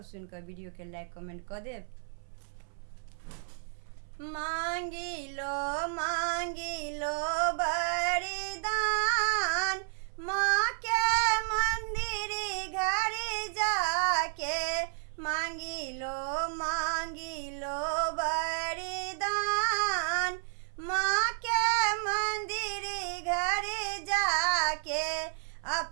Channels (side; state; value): left; silent; 57 dB below the other